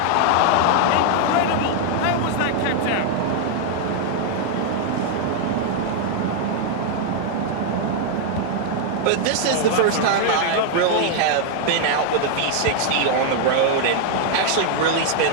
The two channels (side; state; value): both; different; correlation 0.00